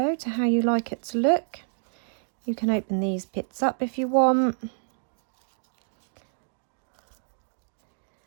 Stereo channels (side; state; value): left; silent; digital silence